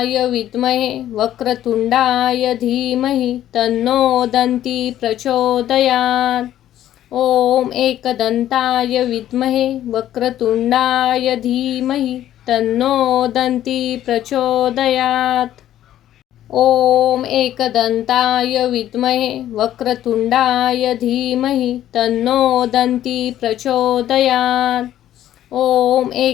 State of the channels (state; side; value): quieter; right; 12.2 dB